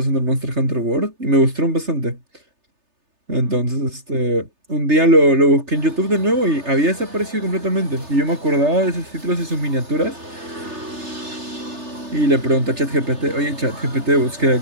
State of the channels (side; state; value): left; late; 3.3 ms